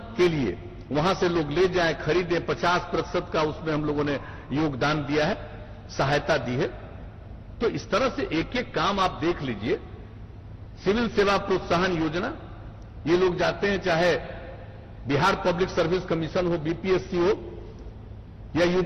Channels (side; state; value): both; identical; correlation 1.00